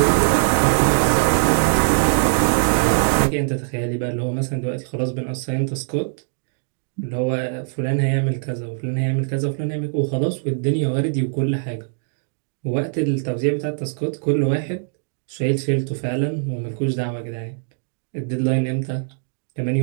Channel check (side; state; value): left; silent; digital silence